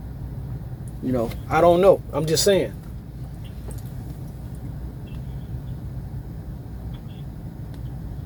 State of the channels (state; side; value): identical; both; correlation 1.00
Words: I don't know. I'm just saying.